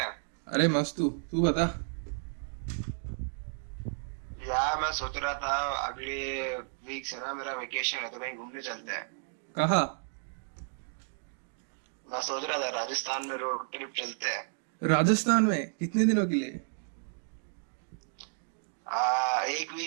अरे मस्त। तू तू बता। यार मैं सोच रहा था अगले वीक से ना मेरा वेकेशन है तो कहीं घूमने चलते हैं। कहाँ? मैं सोच रहा था राजस्थान में रोड ट्रिप चलते हैं। राजस्थान में कितने दिनों के लिए? एक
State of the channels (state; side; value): silent; left; digital silence